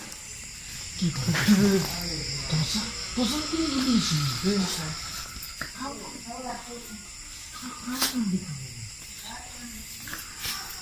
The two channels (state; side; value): identical; both; correlation 1.00